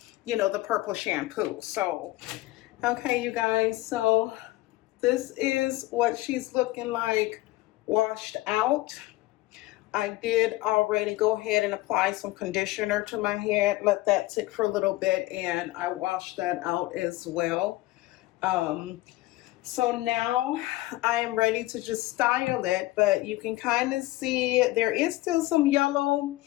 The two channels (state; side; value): quieter; right; 18.4 dB